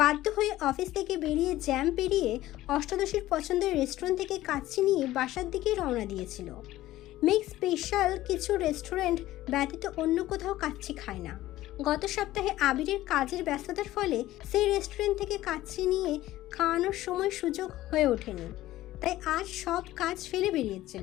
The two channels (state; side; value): quieter; right; 15.5 dB